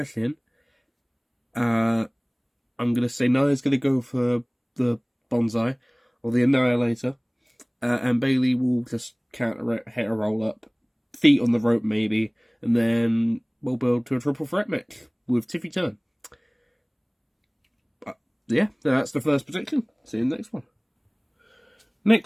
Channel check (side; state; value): both; identical; correlation 1.00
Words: in. I'm going to say Nia's going to go for the Bonsai or the Annihilator, and Bayley will just counter it, hit a roll up, feet on the rope maybe, and then we'll build to a triple threat match with Tiffy Turn. Yeah, that's the first prediction. See you in the next one.